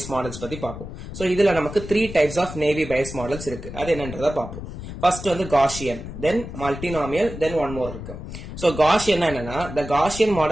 models பத்தி பார்ப்போம். சோ இதுல நமக்கு 3 types of naive Bayes models இருக்கு, அது என்னன்றத பார்ப்போம். First வந்து Gaussian, then multinomial, then one more இருக்கு. So Gaussian என்னன்னா the Gaussian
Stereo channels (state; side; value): noise; left; rumble, 10 dB below the sound